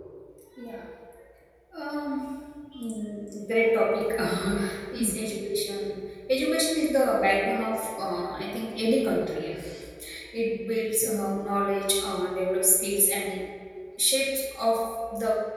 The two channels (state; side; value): identical; both; correlation 1.00